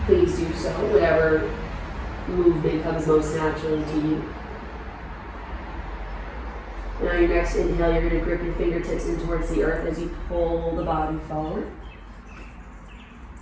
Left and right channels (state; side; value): identical; both; correlation 1.00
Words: please do so, whatever movement comes most naturally to you. Now your next inhale, you're going to grip your fingertips in towards the earth as you pull the body forward.